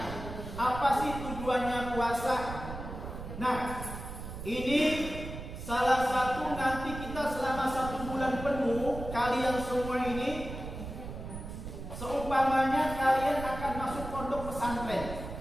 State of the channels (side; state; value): right; noise; rumble, 9 dB below the sound